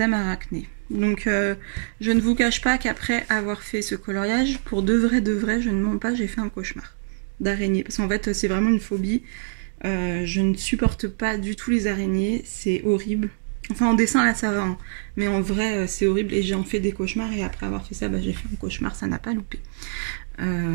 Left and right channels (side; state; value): left; silent; digital silence